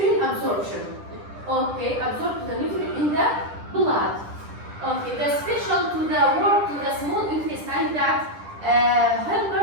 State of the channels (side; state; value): left; late; 10 ms